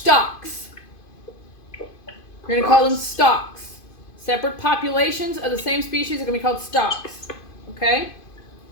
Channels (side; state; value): right; late; 2.5 ms